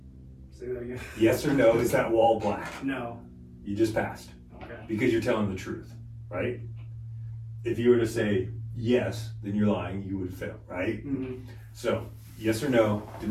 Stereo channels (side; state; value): both; identical; correlation 1.00